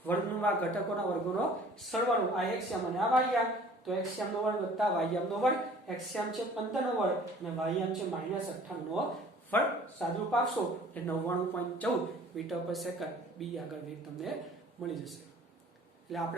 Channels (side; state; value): both; normal; correlation 0.50